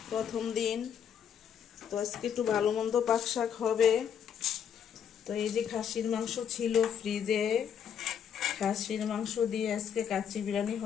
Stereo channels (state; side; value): quieter; right; 8.2 dB